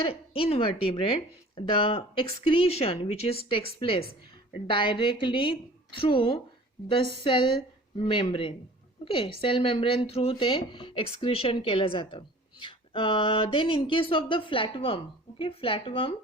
invertebrate, the excretion which is takes place directly through the cell membrane. Okay, cell membrane through ते excretion केलं जातं. Then in case of the flatworm, okay, flatworm,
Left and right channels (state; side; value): normal; both; correlation 0.46